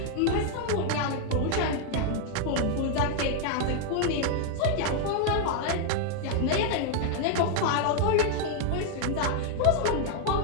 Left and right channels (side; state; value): both; different; correlation 0.00